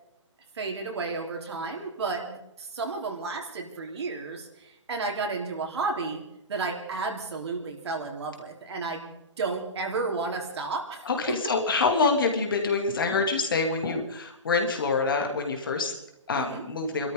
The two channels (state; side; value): normal; both; correlation -0.17